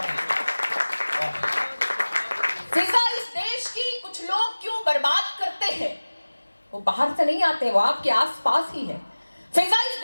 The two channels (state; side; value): inverted; both; correlation -1.00